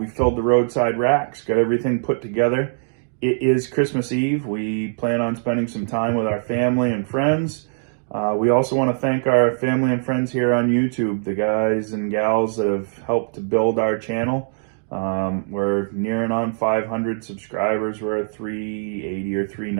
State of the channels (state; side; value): silent; left; digital silence